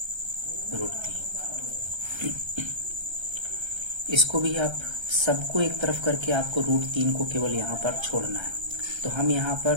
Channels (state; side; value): late; left; 1.3 ms